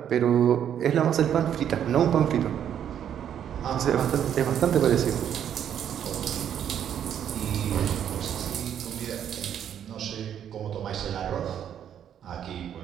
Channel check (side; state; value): left; quieter; 9.5 dB